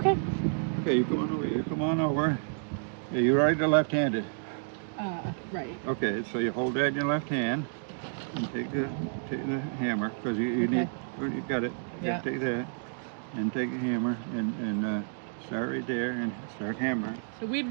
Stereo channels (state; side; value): silent; left; digital silence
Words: Okay, you come on over. You come on over. Yeah, you're right or left-handed? Right. Okay, so you hold that in your left hand and take the hammer, because you need. Oh, you got it. Yeah. Take that and take a hammer and start right there and start hammering. So we've